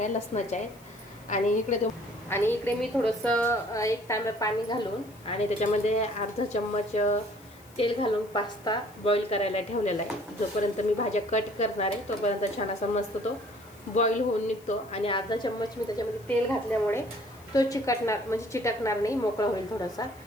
लसणाच्या आहेत. आणि इकडे मी थोडंसं 1 तांब्या पाणी घालून आणि त्याच्यामध्ये अर्धा चम्मच तेल घालून पास्ता बॉईल करायला ठेवलेला आहे. जोपर्यंत मी भाज्या कट करणार आहे तोपर्यंत छान असा मस्त तो बॉईल होऊन निघतो. आणि अर्धा चम्मच मी त्याच्यामध्ये तेल घातल्यामुळे तो चिटकणार नाही, मोकळा होईल थोडासा.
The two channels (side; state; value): left; noise; hiss, 26 dB below the sound